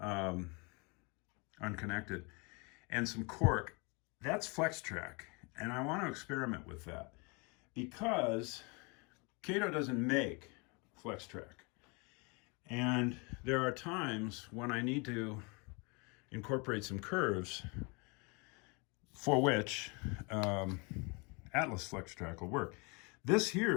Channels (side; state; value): right; quieter; 30.4 dB